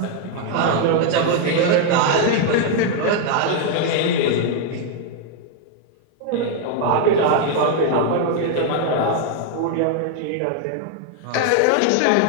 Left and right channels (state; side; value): different; both; correlation 0.00